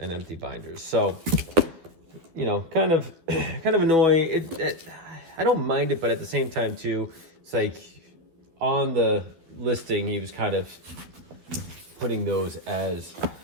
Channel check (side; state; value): left; late; 12 ms